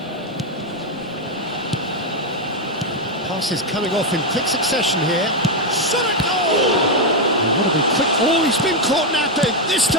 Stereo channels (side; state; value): both; normal; correlation 0.03